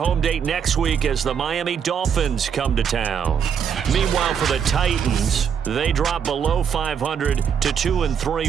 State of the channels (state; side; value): quieter; left; 7.5 dB